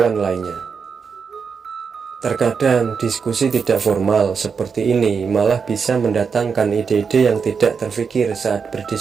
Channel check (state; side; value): quieter; left; 5.9 dB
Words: lainnya. Terkadang diskusi tidak formal seperti ini malah bisa mendatangkan ide-ide yang tidak terfikir saat